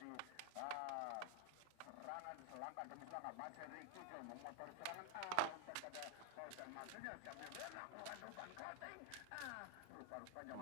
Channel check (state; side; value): different; both; correlation 0.00